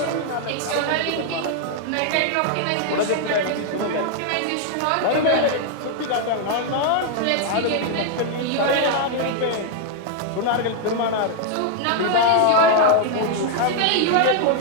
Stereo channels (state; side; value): different; both; correlation 0.00